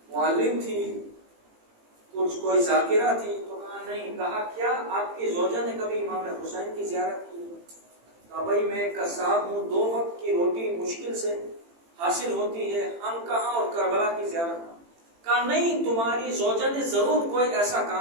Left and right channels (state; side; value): late; left; 18 ms